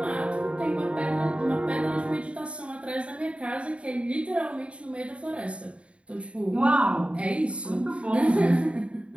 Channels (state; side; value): late; left; 0.060 ms